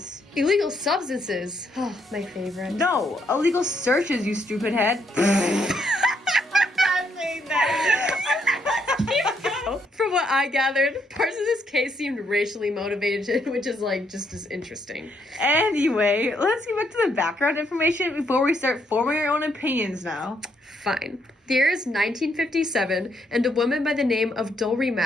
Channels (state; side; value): normal; both; correlation 0.74